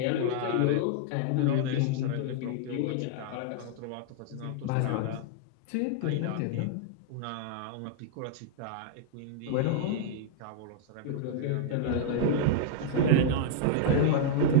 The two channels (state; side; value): different; both; correlation -0.01